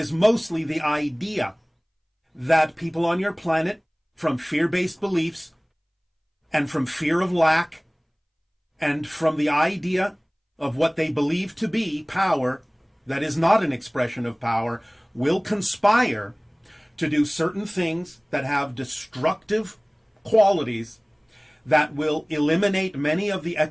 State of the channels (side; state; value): both; identical; correlation 1.00